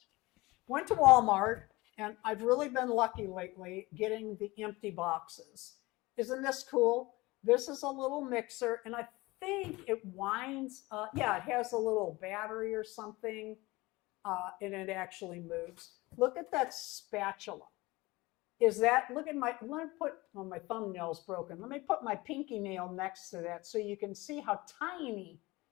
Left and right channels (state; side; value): quieter; right; 21.5 dB